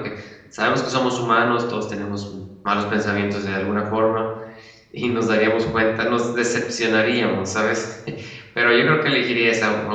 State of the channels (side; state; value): both; identical; correlation 1.00